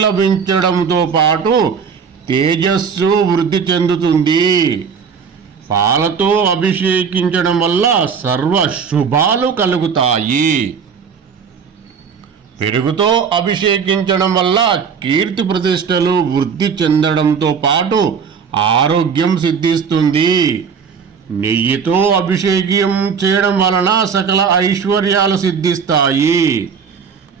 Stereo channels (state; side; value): quieter; left; 6.4 dB